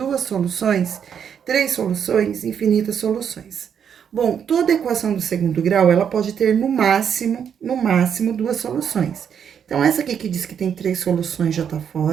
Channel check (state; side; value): quieter; left; 7.9 dB